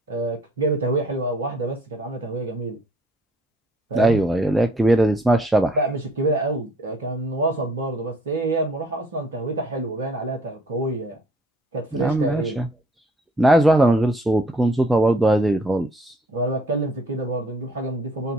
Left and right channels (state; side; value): normal; both; correlation 0.61